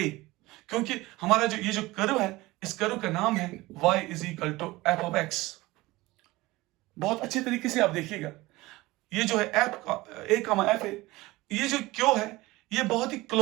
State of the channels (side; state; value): left; quieter; 19.9 dB